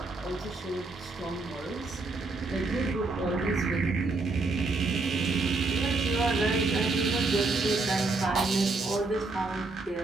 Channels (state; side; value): quieter; left; 3.5 dB